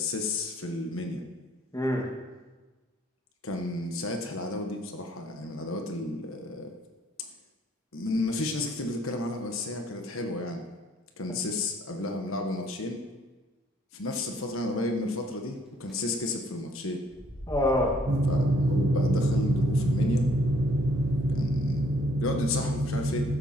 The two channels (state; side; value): normal; both; correlation 0.63